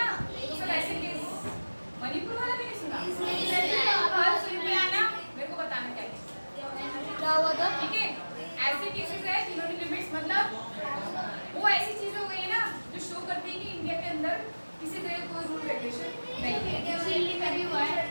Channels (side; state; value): both; inverted; correlation -1.00